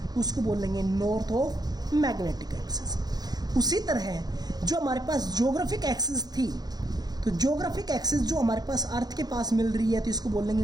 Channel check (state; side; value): late; left; 0.19 ms